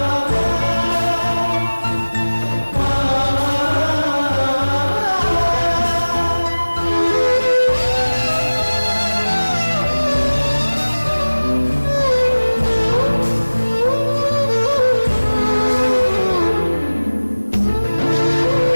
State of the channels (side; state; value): both; inverted; correlation -1.00